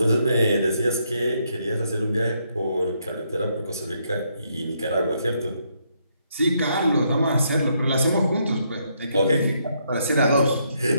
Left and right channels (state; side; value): inverted; both; correlation -0.75